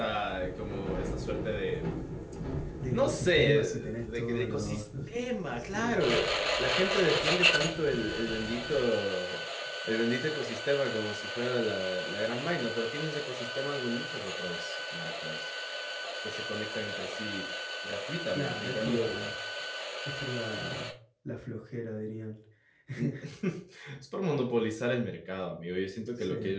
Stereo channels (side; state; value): both; identical; correlation 1.00